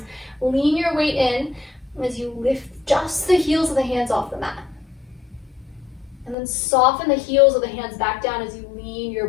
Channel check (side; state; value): right; drops out; at 6.4 s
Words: Lean your weight in as you lift just the heels of the hands off the mat. And then soften the heels of the hands back down as you lean your